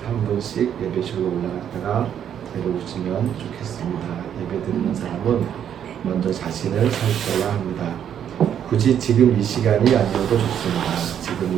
한 분씩 예배실로 올라갔다가 내려오시면 좋겠습니다. 예배 드리는 사람은 먼저 자신을 살펴야 합니다. 굳이 지금 이 시간이 아니어도 좋습니다.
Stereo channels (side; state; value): left; quieter; 9.3 dB